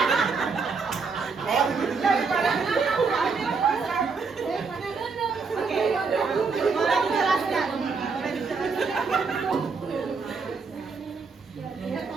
Boleh dijelaskan? Ya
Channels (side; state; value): left; quieter; 4.8 dB